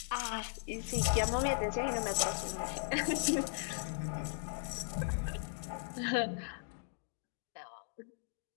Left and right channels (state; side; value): silent; right; digital silence